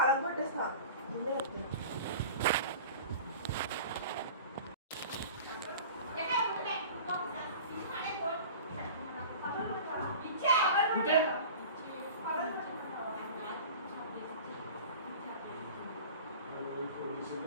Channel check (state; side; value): inverted; both; correlation -0.39